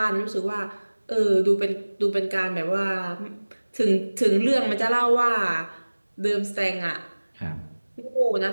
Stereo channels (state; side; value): inverted; both; correlation -1.00